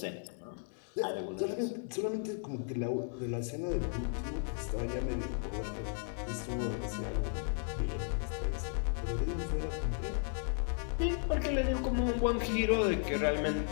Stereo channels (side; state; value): right; silent; 54 dB below the other